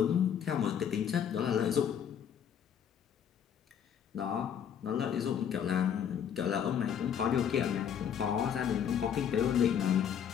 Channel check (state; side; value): quieter; right; 8.5 dB